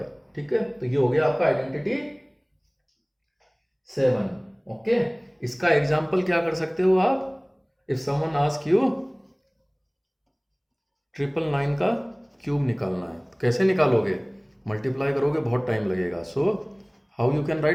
ठीक है। तो ये हो गया आपका आइडेंटिटी 7। ओके, इसका एग्जाम्पल क्या कर सकते हो आप? इफ समवन आस्क यू 999 का क्यूब निकालना है, तो कैसे निकालोगे? मल्टीप्लाई करोगे, बहुत टाइम लगेगा। So how you can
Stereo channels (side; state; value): both; identical; correlation 1.00